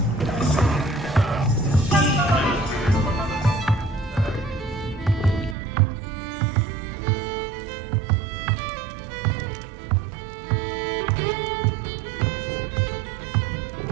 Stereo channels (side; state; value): left; drops out; at 5.6 s